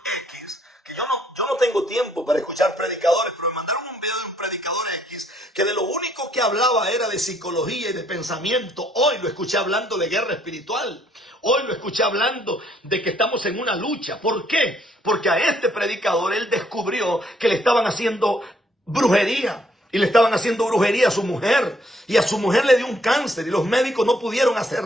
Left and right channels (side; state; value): both; normal; correlation 0.67